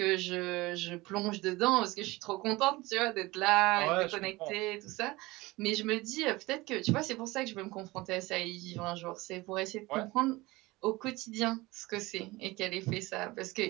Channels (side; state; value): left; quieter; 21.1 dB